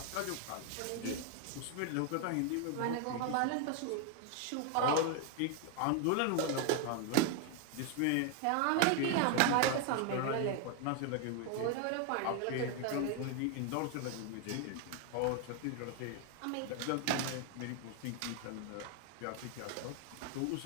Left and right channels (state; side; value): different; both; correlation 0.01